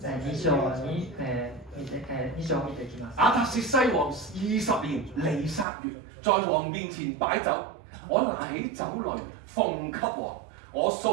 2章を見ていきます。亞達薛西王20年尼撒月，在王面前擺酒，我拿起酒來奉給王。我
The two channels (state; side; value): drops out; left; at 5.7 s